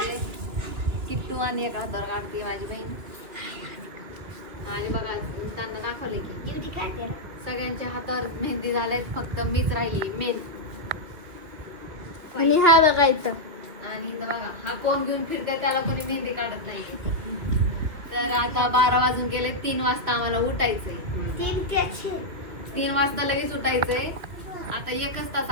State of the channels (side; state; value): left; late; 2.7 ms